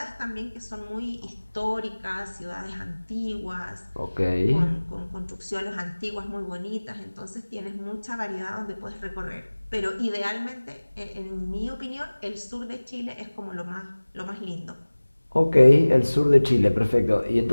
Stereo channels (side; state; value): both; inverted; correlation -1.00